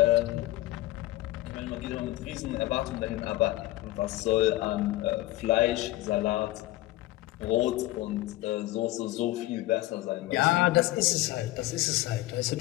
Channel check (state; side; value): quieter; right; 17.2 dB